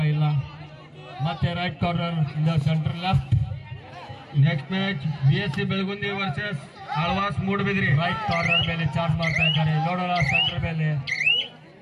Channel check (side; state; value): both; identical; correlation 1.00